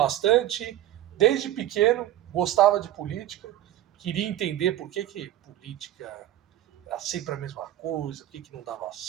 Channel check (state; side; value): quieter; left; 13.2 dB